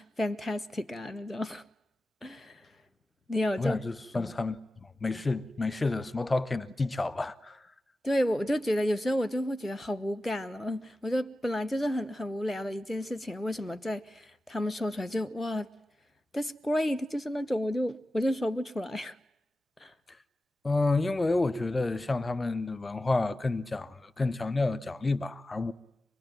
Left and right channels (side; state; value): both; normal; correlation 0.94